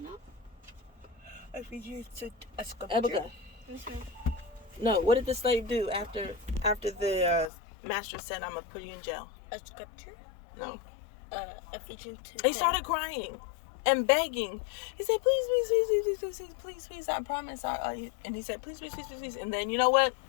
know. If we use a sculpture. Abigail. No, what did the slave do after the master said, I'm going to put you in jail? A sculpture? No. Ephesians 2. He started crying and begging. He said, please, I promise. And he said, please. And then, you know what?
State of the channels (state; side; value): drops out; right; at 7.5 s